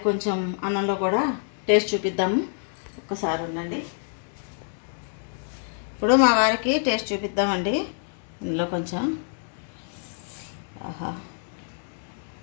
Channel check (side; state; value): right; silent; digital silence